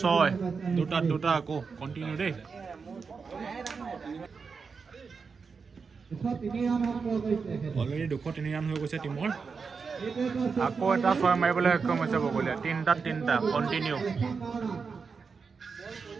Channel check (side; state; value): left; quieter; 5.2 dB